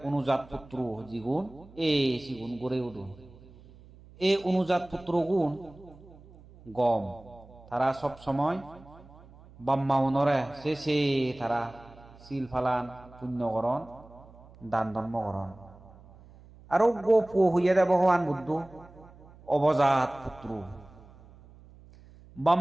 অনুজাত পুত্র জিগুন এই সিগুন গড়ে উঠুন এই অনুজাত পুত্র গুণ গম তারা সব সময় বাম্মাউনরে সে তারা শিল ফালান পুণ্যকরণ দান ধর্মকরণ আরো গো পু হইয়া দে ভগবান বুদ্ধ অবজাত পুত্র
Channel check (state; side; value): noise; right; hum, 22 dB below the sound